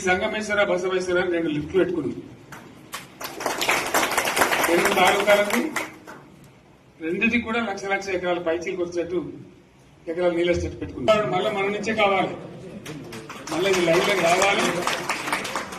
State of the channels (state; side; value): identical; both; correlation 1.00